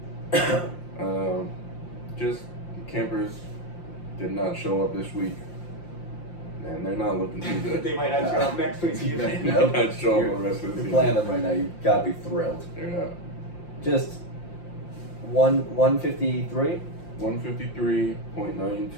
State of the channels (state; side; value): late; right; 5.7 ms